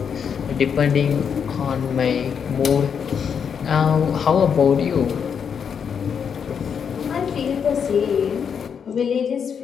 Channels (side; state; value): right; quieter; 7.1 dB